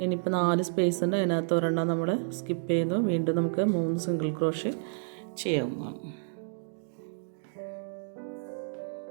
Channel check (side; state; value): left; silent; digital silence